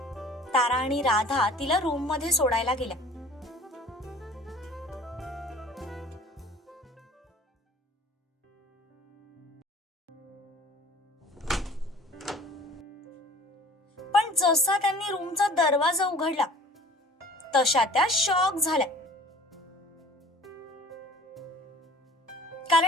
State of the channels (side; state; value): both; normal; correlation 0.47